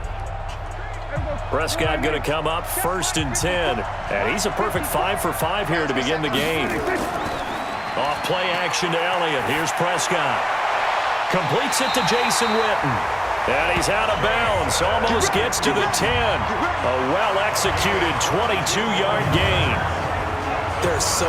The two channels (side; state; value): both; identical; correlation 1.00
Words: Prescott going to come up 1st and 10. And he's a perfect 5 for 5 here to begin the game. Off play action to Elliott. Here's Prescott. Completes it to Jason Witten. And he's out of bounds. Almost gets to the 10. A well-executed 22-yard gain. There are so